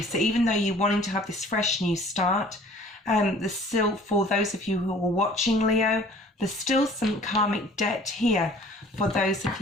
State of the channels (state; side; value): normal; both; correlation 0.50